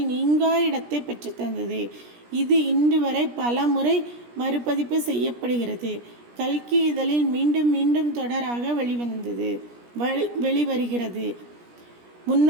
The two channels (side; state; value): left; late; 17 ms